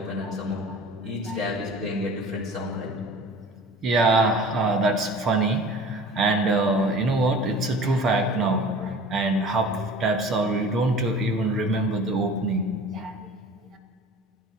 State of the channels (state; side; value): normal; both; correlation 0.43